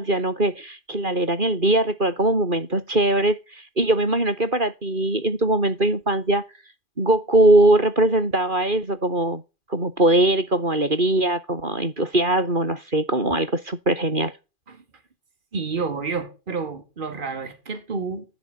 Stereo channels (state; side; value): late; left; 2.4 ms